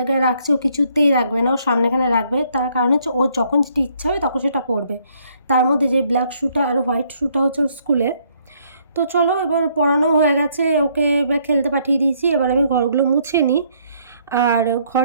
রাখছি ও কিছুতেই রাখবে না, ও সামনেখানে রাখবে। তার কারণ হচ্ছে ওর যখন যেটা ইচ্ছা হবে তখন সেটা পরবে। তার মধ্যে যে ব্ল্যাক শ্যুটা আর হোয়াইট শ্যুটা হচ্ছে ওর স্কুলে। তো চলো এবার পড়ানো হয়ে গেছে, ওকে এবার খেলতে পাঠিয়ে দিয়েছি। এবার আমি ঘরগুলো মুছে নিই। আর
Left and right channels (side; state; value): both; inverted; correlation -0.68